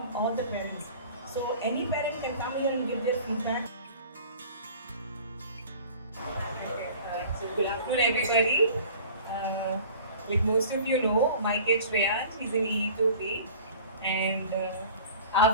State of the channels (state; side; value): inverted; both; correlation -0.45